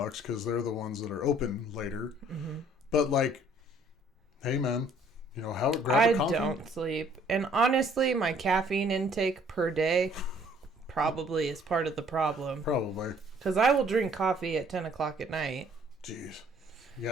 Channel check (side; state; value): both; normal; correlation 0.59